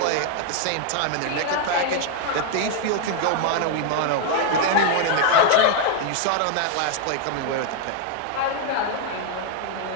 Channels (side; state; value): both; different; correlation 0.00